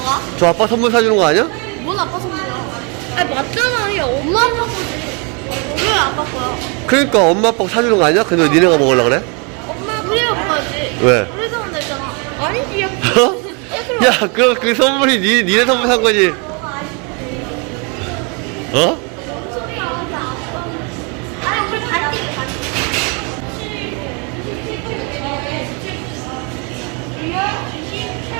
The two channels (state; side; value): quieter; left; 33.6 dB